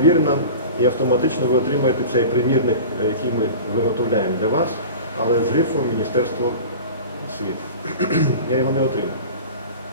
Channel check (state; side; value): inverted; both; correlation -0.35